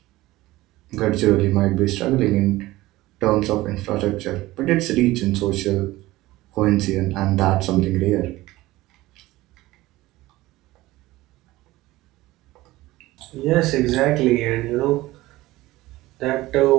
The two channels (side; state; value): left; quieter; 18.1 dB